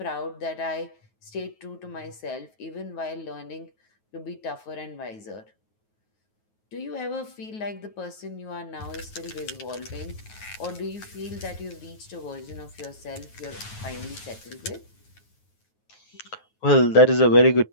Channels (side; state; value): right; late; 9.4 ms